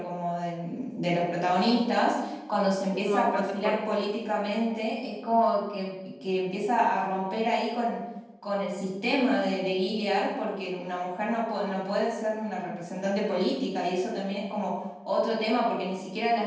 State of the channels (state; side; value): identical; both; correlation 1.00